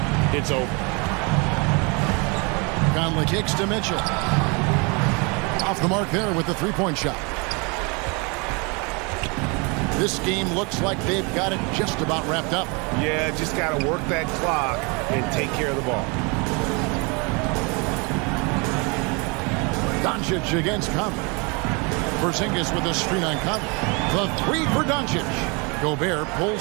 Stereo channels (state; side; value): quieter; left; 30.7 dB